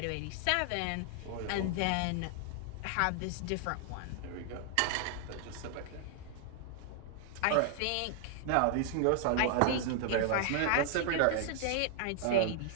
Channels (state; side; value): different; both; correlation 0.00